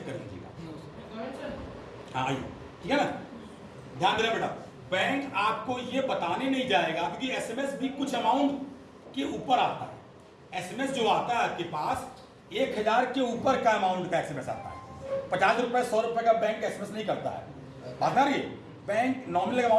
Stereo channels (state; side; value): identical; both; correlation 1.00